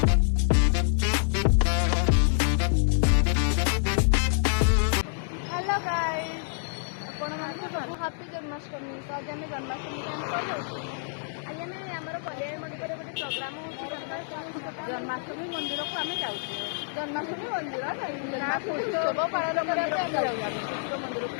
हेलो गाइस ଆପଣମାନଙ୍କୁ ସବୁ ହାପି ଜନ୍ମାଷ୍ଟମୀ। ତ ଆଜି ଆମେ ଜନ୍ମାଷ୍ଟମୀ ଆମେ ଯାଉଛୁ। ଆଜି ଆମେ ଆମର କଲ୍ୟାଣ ମଣ୍ଡପରେ ଗୋଟେ ପ୍ରୋଗ୍ରାମ ହେଉଛି ଜନ୍ମାଷ୍ଟମୀ ମନ୍ଦିରକୁ ଆମେ ଯାଉଛୁ। ଜନ୍ମାଷ୍ଟମୀ ମନ୍ଦିର ଉତ୍ସବ ପାଳନ କରିବା ପାଇଁ ଆମେ ଯାଉଛୁ ମନ୍ଦିରକୁ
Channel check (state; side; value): silent; right; digital silence